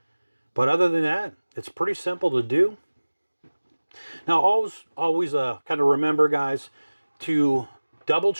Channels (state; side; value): inverted; both; correlation -1.00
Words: But other than that, it's pretty simple to do. Now, always kind of remember, guys, to double